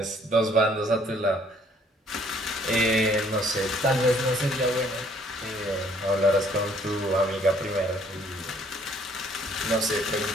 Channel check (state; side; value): normal; both; correlation 0.62